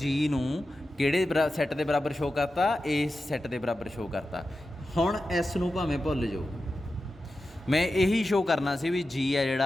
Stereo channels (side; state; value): both; normal; correlation 0.92